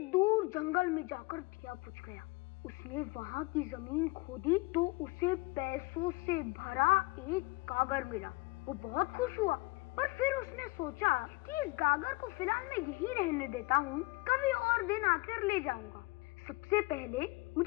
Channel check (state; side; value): quieter; right; 24.1 dB